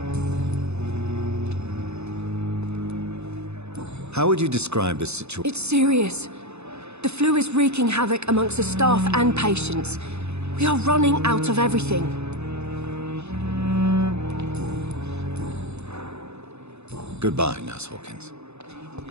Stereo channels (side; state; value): left; late; 0.81 ms